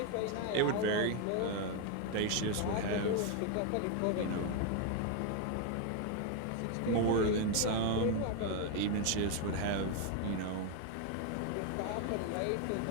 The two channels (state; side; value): different; both; correlation 0.01